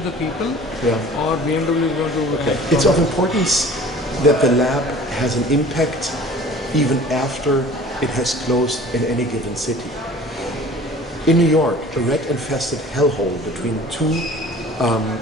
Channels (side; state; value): both; normal; correlation 0.46